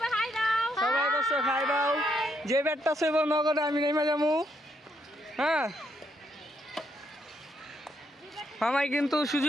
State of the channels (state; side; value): normal; both; correlation 0.76